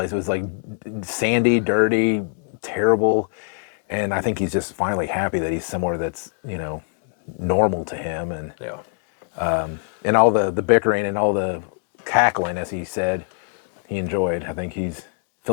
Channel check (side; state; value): right; silent; 58 dB below the other